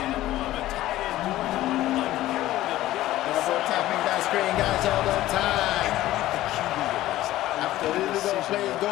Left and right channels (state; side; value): quieter; right; 15.1 dB